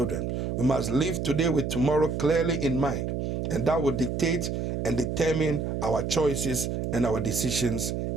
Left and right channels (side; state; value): right; noise; hum, 2 dB below the sound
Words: We must live today with tomorrow clearly in mind, and that will dictate and determine our choices and our decisions